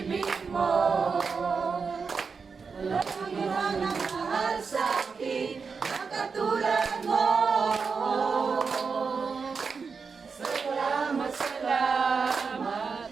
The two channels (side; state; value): left; quieter; 5.3 dB